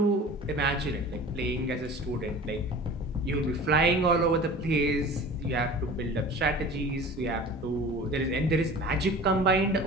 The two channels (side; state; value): both; normal; correlation 0.40